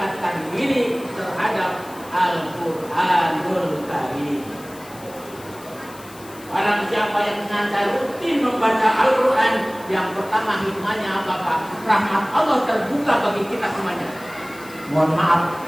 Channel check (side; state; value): left; noise; hiss, 20 dB below the sound